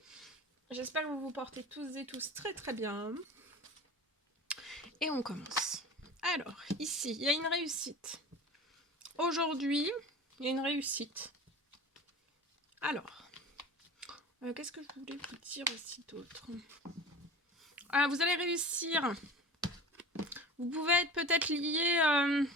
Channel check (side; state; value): both; normal; correlation 0.36